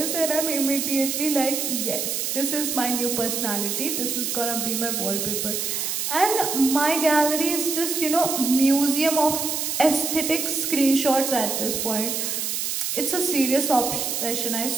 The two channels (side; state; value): right; noise; hiss, 1 dB below the sound